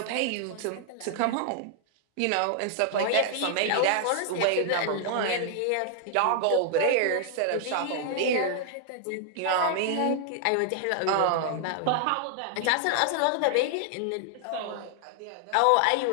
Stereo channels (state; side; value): different; both; correlation 0.00